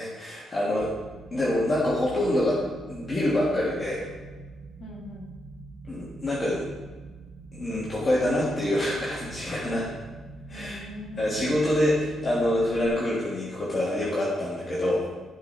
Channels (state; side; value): normal; both; correlation 0.83